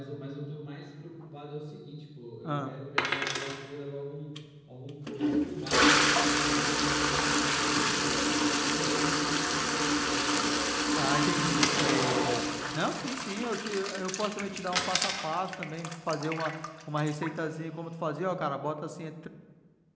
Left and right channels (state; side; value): identical; both; correlation 1.00